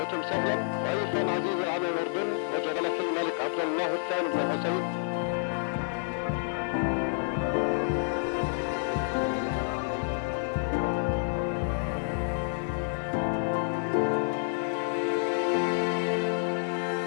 سهلا ضيفا عزيزا على الأردن وجلالة الملك عبد الله الثاني بن حسين.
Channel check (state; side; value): silent; right; digital silence